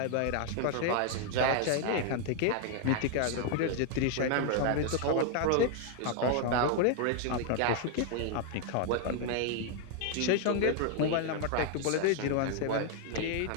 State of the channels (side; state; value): both; different; correlation 0.00